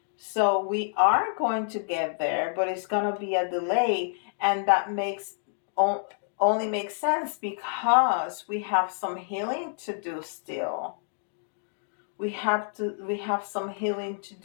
So we are going to get there, but it's going to be a delay. And that only makes sense because we have some healing to do still. We have some healing to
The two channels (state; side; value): silent; right; digital silence